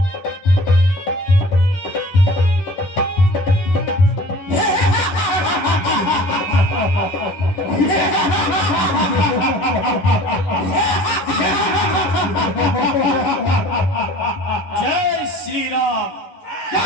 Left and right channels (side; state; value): right; late; 11 ms